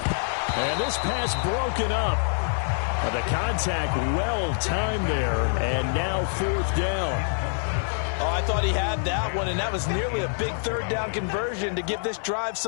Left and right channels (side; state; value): right; silent; 57 dB below the other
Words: this pass broken up. The contact well timed there. And now fourth down. Oh, I thought he had that one, and that was nearly a big third down conversion to give this drive